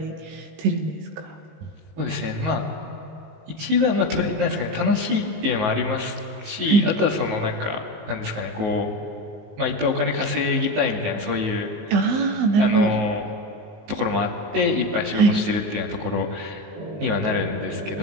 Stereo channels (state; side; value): late; left; 19 ms